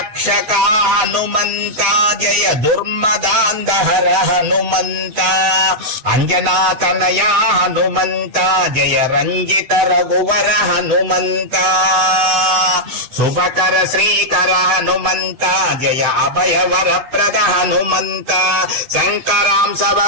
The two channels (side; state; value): left; late; 8.0 ms